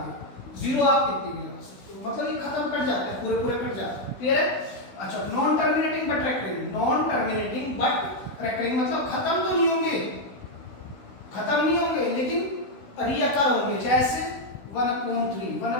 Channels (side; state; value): right; late; 16 ms